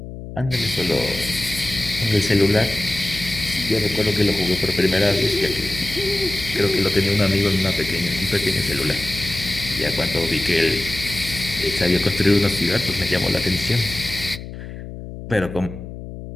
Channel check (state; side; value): noise; left; hum, 11 dB below the sound